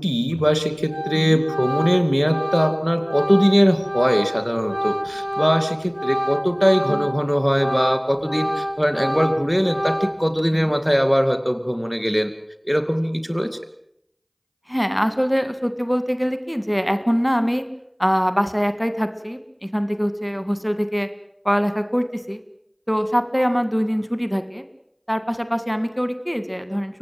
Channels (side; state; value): both; identical; correlation 1.00